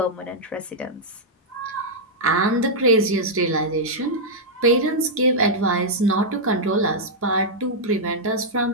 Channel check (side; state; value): both; normal; correlation -0.06